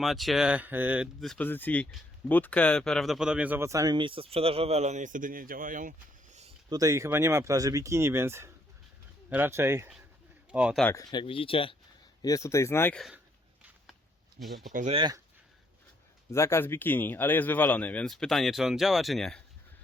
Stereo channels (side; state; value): both; normal; correlation 0.70